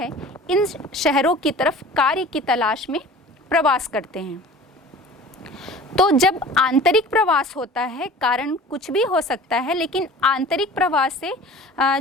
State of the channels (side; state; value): both; normal; correlation 0.42